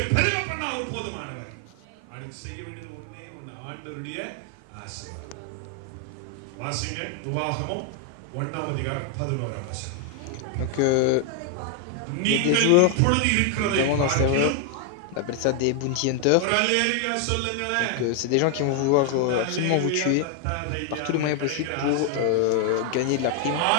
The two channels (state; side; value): different; both; correlation 0.00